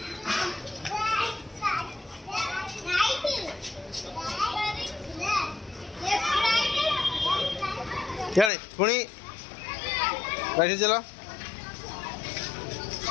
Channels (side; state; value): right; drops out; at 8.5 s